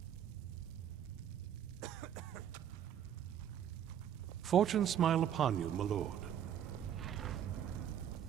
Fortune smile upon you, my lord.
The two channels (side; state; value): left; quieter; 9.7 dB